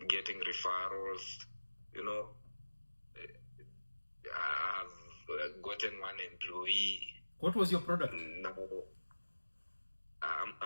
getting referrals, you know. I have gotten one employee. What was your product? Now,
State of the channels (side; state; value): both; inverted; correlation -1.00